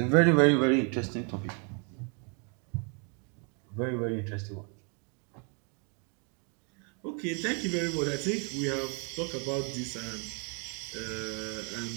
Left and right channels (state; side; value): quieter; left; 37.0 dB